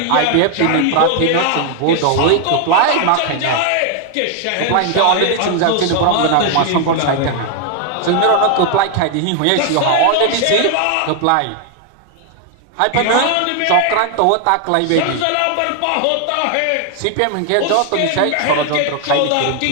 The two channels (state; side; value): different; both; correlation 0.00